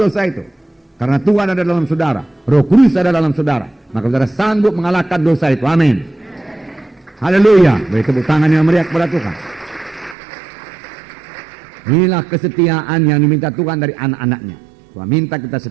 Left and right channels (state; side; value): drops out; left; at 10.2 s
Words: itu. Karena Tuhan ada dalam saudara. Roh Kudus ada dalam saudara. Maka saudara sanggup mengalahkan dosa itu. Amin. Haleluya. Beri tepuk tangan yang meriah kepada Tuhan. Inilah kesetiaan yang diminta Tuhan dari anak-anaknya. Tuhan minta kita